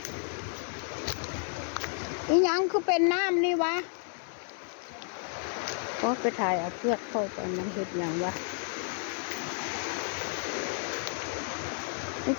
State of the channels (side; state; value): right; silent; 57 dB below the other